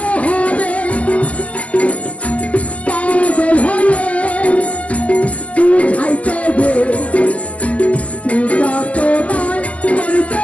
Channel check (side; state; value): right; late; 0.070 ms